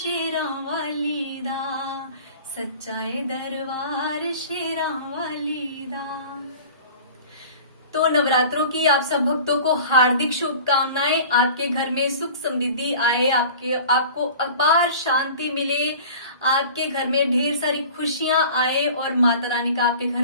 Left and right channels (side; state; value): both; inverted; correlation -0.41